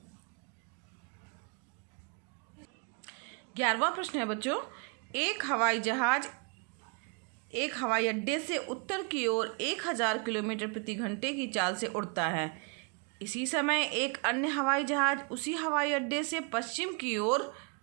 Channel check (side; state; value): left; quieter; 35.7 dB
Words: 11वां प्रश्न है बच्चों, एक हवाई अड्डे से उत्तर की ओर 1000 किलोमीटर प्रति घंटे की चाल से उड़ता है। इसी समय एक अन्य हवाई जहाज उसी हवाई अड्डे से पश्चिम की ओर